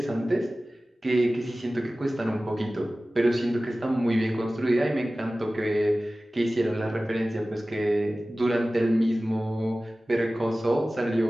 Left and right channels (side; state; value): both; normal; correlation 0.97